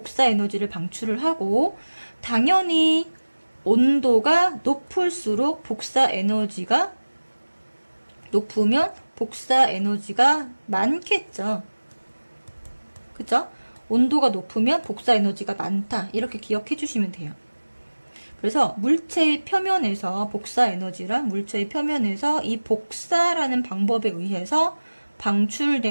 에너지를 방출을 하고, 당연히 온도가 높을수록 복사 에너지가 높으면 복사 에너지가 많겠죠. 그쵸? 온도가 높으면 복사 에너지가 많다. 이렇게 기억해 주시면 돼요. 그래서 물체의 표면에서 복사 에너지랑 물체의 표면에서 이 복사라는 방법에 의해서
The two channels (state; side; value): inverted; both; correlation -1.00